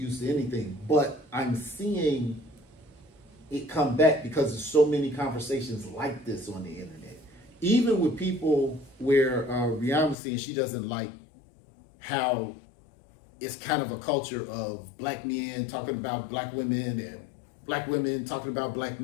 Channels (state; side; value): drops out; right; at 10.2 s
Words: to anything. But I'm seeing it come back because there's so many conversations like this on the internet. Even with people where Rihanna was saying she doesn't like how it's kind of a culture of black men talking about black women and black women talking about black